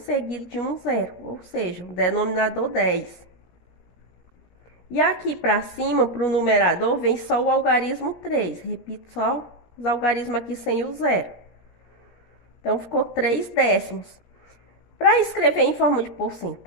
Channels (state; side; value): late; right; 17 ms